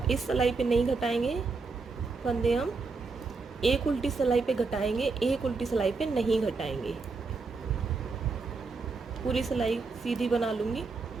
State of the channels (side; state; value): left; quieter; 4.2 dB